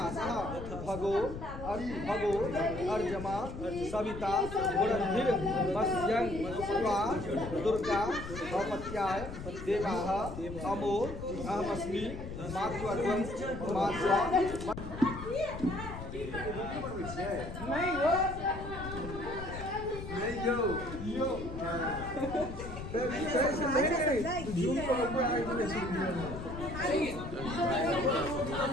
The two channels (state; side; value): noise; left; rumble, 9 dB below the sound